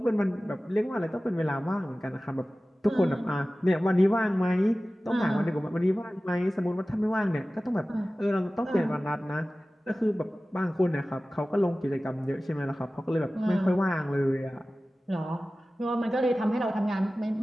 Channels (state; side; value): normal; both; correlation 0.96